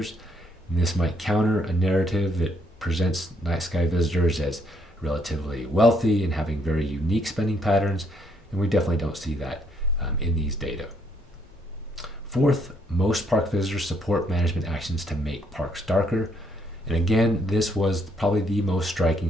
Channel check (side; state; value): both; normal; correlation 0.70